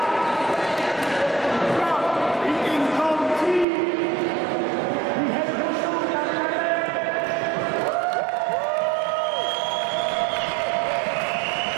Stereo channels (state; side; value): drops out; left; at 3.7 s